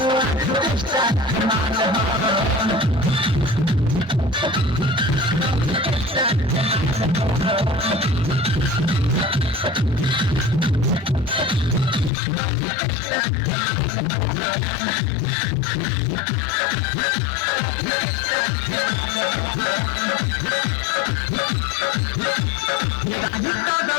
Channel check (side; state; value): right; drops out; at 12.1 s